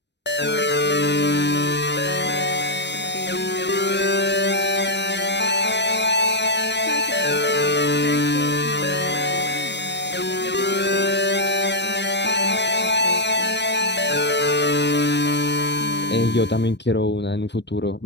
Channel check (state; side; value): late; right; 0.50 ms